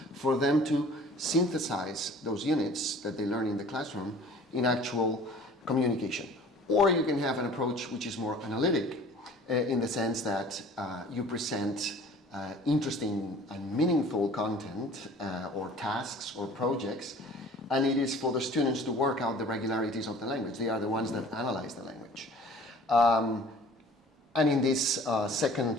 for them to synthesize those units that they learn in the classroom in actual communication. Or you can have an approach which is more analytic, in the sense that you present interesting and meaningful content or tasks or projects, and it is for the students to work out the regularities of the language. They are the ones that analyze the language. And in this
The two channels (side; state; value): both; normal; correlation 0.48